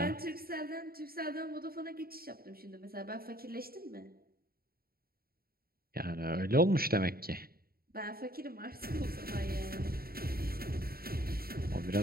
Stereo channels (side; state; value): left; late; 0.44 ms